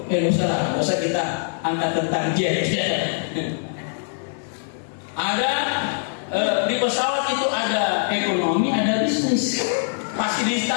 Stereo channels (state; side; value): silent; right; digital silence